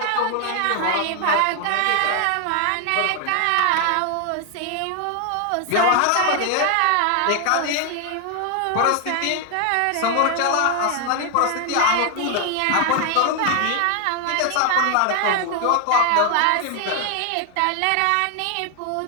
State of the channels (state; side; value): different; both; correlation 0.00